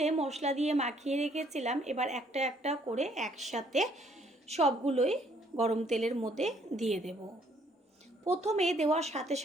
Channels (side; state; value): both; normal; correlation 0.65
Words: মশলা দিয়ে মাখিয়ে রেখেছিলাম, এবার একটা একটা করে একসাথে সবগুলোই গরম তেলের মধ্যে দিয়ে দেব। প্রথমে দেওয়ার সাথে